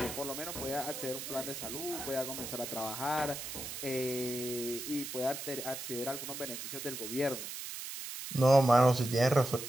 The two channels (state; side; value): noise; right; hiss, 7 dB below the sound